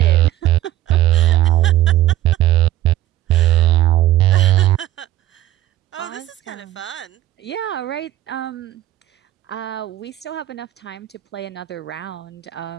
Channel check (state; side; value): quieter; left; 14.2 dB